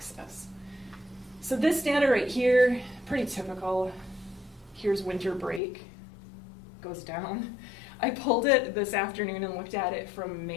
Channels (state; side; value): drops out; right; at 5.6 s